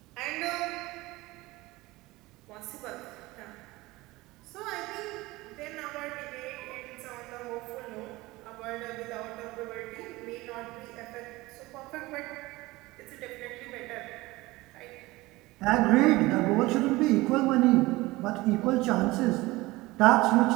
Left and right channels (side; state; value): left; quieter; 20.3 dB